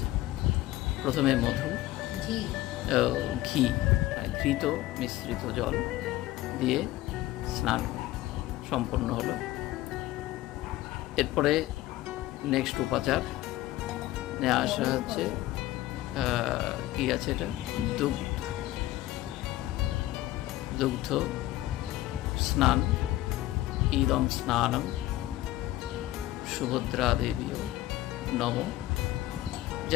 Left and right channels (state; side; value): quieter; right; 16.0 dB